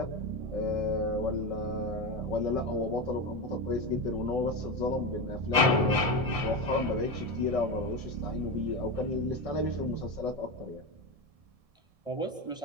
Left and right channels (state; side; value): late; left; 1.6 ms